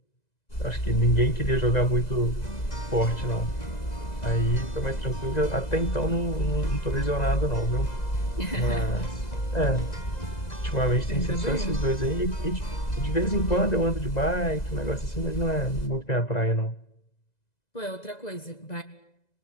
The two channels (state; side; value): late; right; 2.0 ms